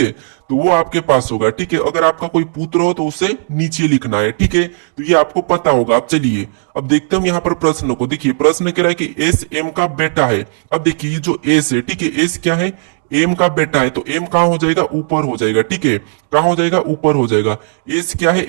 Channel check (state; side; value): silent; left; digital silence